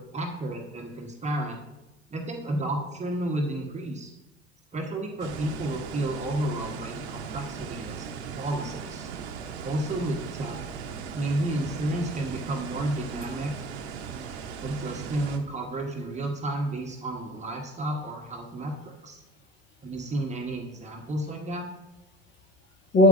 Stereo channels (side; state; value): both; normal; correlation 0.49